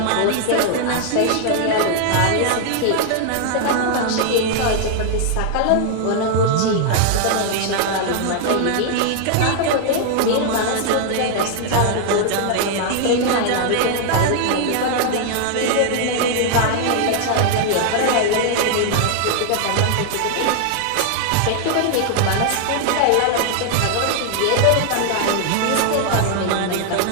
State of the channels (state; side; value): different; both; correlation 0.00